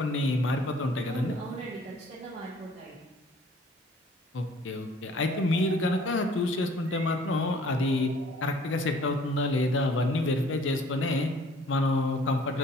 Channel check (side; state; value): both; normal; correlation 0.55